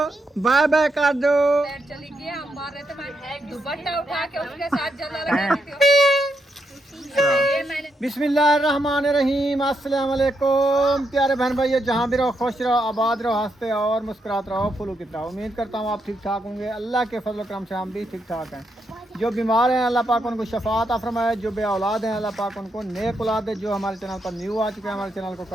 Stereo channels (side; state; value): both; normal; correlation 0.80